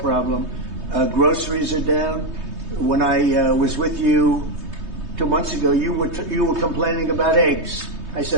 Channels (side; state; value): left; late; 3.2 ms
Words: Groceries are down. When I was with you 2 months ago, you were complaining about eggs. I